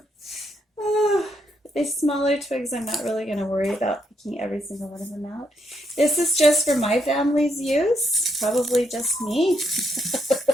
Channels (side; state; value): both; normal; correlation 0.77